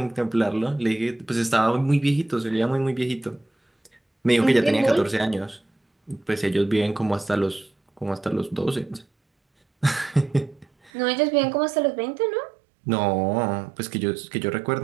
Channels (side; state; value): left; drops out; at 10.9 s